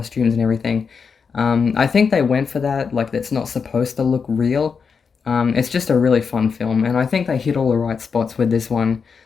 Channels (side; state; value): right; quieter; 5.8 dB